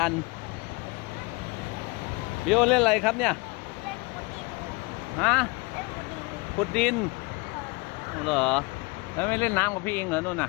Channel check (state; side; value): quieter; right; 26.3 dB